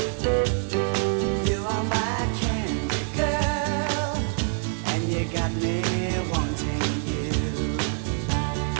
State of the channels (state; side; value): silent; left; 58 dB below the other